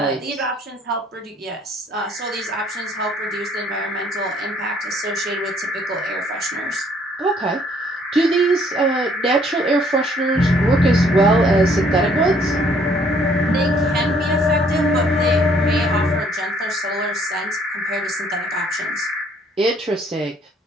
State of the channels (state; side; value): normal; both; correlation 0.63